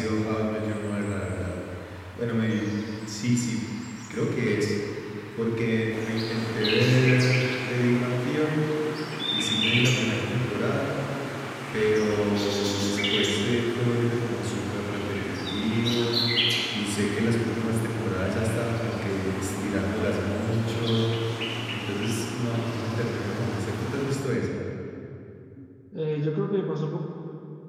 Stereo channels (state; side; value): identical; both; correlation 1.00